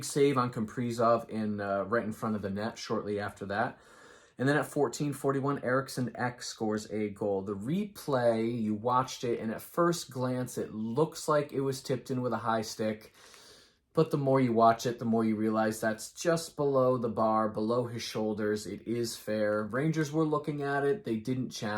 save on Kaprizov right in front of the net shortly after that. And then at 14:41, Eriksson Ek scores a goal. The replay, you watched it, and at first glance, it looks like it was tipped in with a high stick. But the more you watch it, the more you realize that's just below the bar, below his shoulders. It is fair. Rangers were looking at it. They didn't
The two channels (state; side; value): identical; both; correlation 1.00